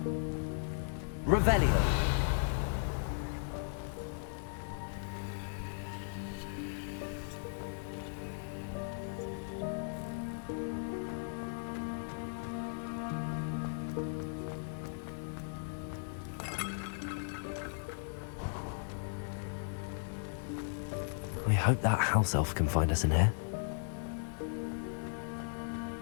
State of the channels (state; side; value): silent; right; digital silence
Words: Revelio. We hope that house elf can find us in here.